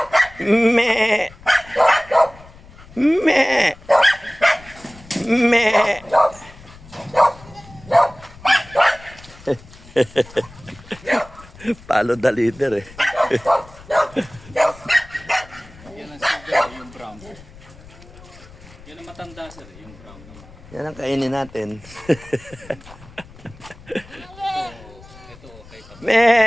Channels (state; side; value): noise; left; rumble, 21 dB below the sound